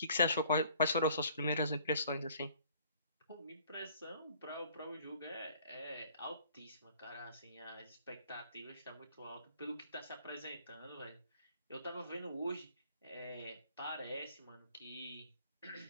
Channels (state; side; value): inverted; both; correlation -0.57